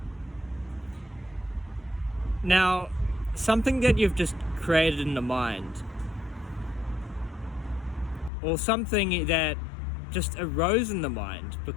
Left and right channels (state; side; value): drops out; right; at 8.3 s